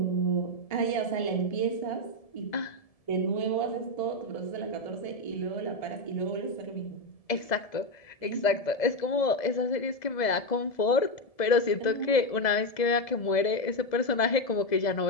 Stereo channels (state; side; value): late; right; 2.0 ms